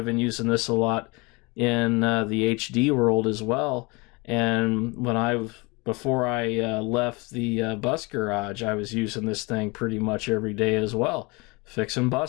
been using this a lot in the HD world as well. And before I left the bus garage, I was using this thing pretty much every day as well, fixing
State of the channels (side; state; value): right; quieter; 26.7 dB